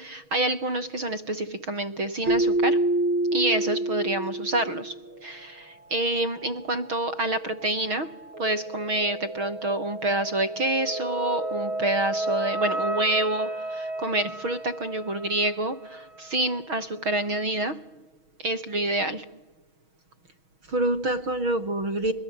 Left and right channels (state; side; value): late; left; 6.3 ms